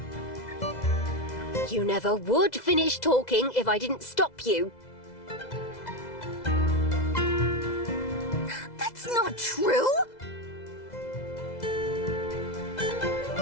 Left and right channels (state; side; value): late; right; 2.0 ms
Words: You never would finish talking if I didn't stop you. That's not true!